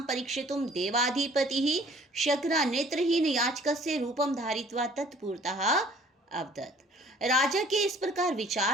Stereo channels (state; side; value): normal; both; correlation 0.54